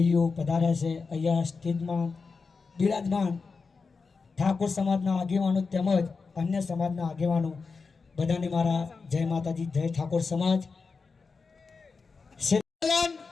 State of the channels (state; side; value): quieter; right; 4.7 dB